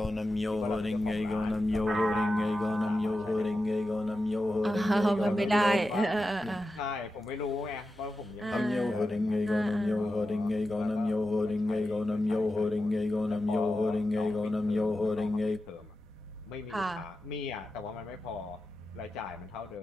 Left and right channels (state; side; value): normal; both; correlation 0.91